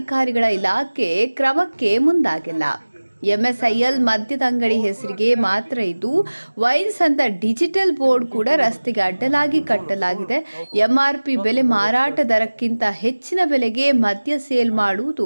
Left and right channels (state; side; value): inverted; both; correlation -1.00